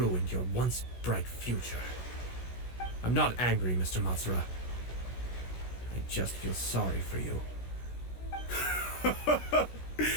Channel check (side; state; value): right; late; 16 ms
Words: your once bright future. I'm not angry, Mr. Matsura. I just feel sorry for you.